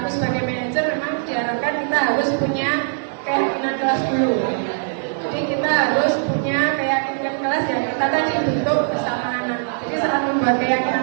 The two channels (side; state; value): left; silent; 58 dB below the other